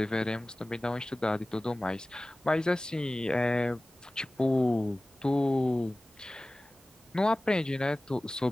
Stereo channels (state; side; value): normal; both; correlation 0.98